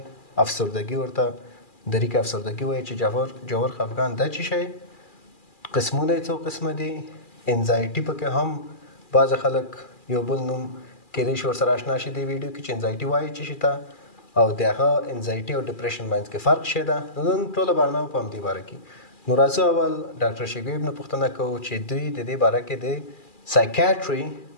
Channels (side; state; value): right; late; 2.4 ms